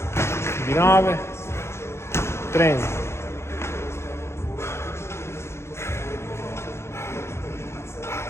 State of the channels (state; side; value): late; right; 0.13 ms